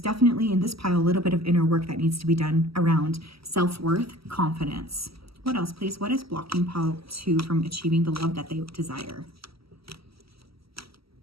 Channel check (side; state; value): left; late; 0.75 ms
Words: in this pile a little bit of inner work that needs to be done around self-worth, confidence. What else, please? What is blocking pile 2 from achieving the love that they desire?